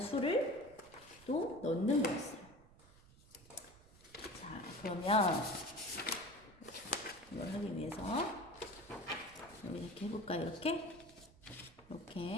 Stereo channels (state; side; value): noise; right; rumble, 23 dB below the sound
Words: 수를 또 넣는 거였어요. 자, 그러면 이걸 하기 위해서 여기 이렇게 해볼까요? 이렇게